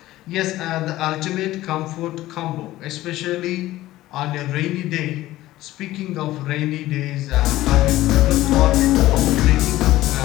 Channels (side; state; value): right; quieter; 16.0 dB